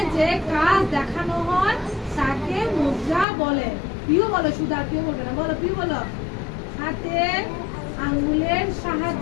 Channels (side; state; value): right; drops out; at 3.2 s